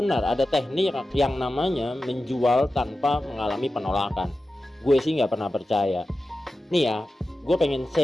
ada teknik yang namanya menjual tanpa mengalami penolakan. Gue sih nggak pernah percaya. Nih ya, gue pengen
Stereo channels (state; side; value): normal; both; correlation 0.93